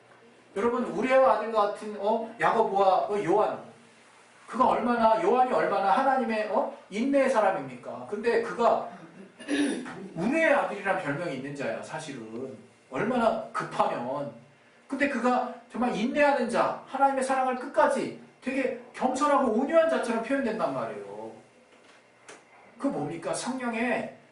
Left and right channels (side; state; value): both; identical; correlation 1.00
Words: 여러분, 우리의 아들 같은 야고보와 요한, 요한이 얼마나 하나님의 인내의 사람입니까? 근데 그가 운의 아들이라는 별명이 있는 자야, 사실은. 얼마나 급하면. 근데 그가 정말 인내하는 자, 하나님의 사랑을 끝까지 되게 겸손하고 온유한 자처럼 표현된단 말이에요. 그 뭡니까? 성령의